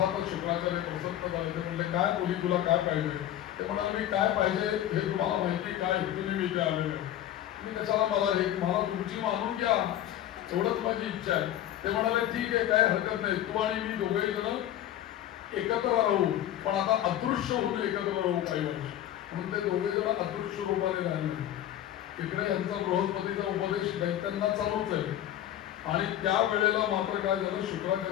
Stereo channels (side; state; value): right; quieter; 12.0 dB